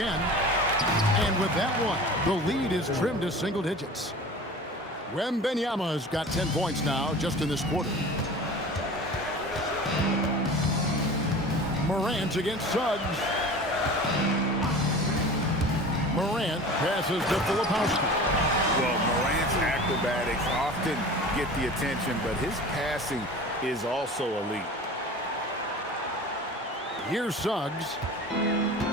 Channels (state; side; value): normal; both; correlation 0.38